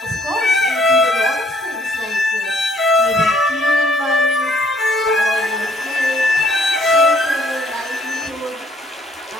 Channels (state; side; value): normal; both; correlation 0.63